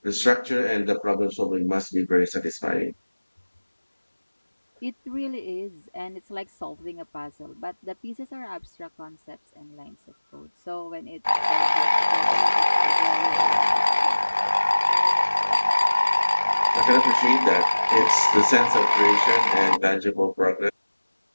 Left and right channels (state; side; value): inverted; both; correlation -1.00